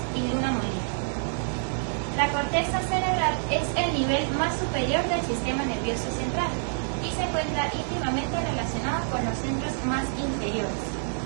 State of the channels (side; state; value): left; silent; digital silence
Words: y Luna Molina. La corteza cerebral es el nivel más superior del sistema nervioso central y se encuentra íntimamente relacionado con los centros más inferiores.